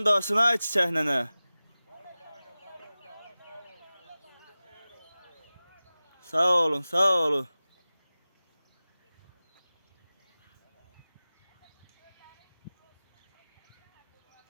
dostuna çiçek nene. Sağ olun, sağ olun.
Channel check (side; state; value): both; inverted; correlation -0.97